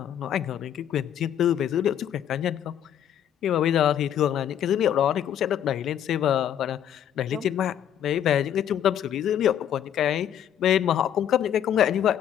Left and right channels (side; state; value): right; quieter; 9.9 dB